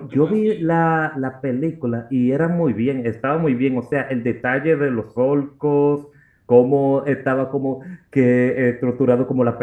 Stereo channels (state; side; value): identical; both; correlation 1.00